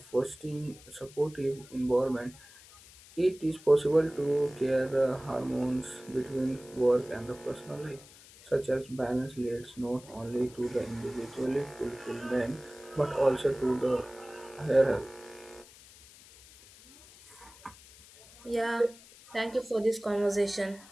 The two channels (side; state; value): left; noise; hiss, 21 dB below the sound